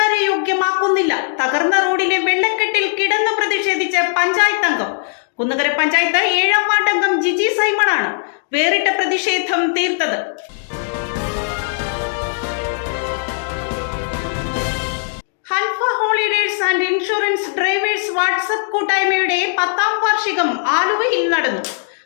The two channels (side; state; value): right; silent; digital silence